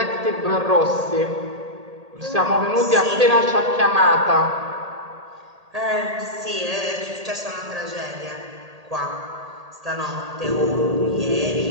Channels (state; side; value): late; left; 1.8 ms